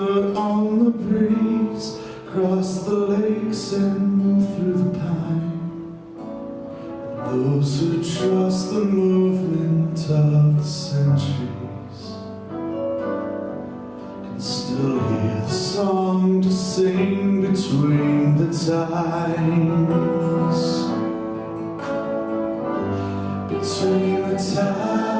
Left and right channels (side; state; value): both; identical; correlation 1.00